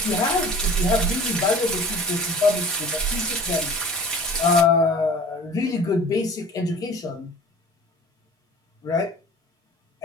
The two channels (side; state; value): both; normal; correlation 0.44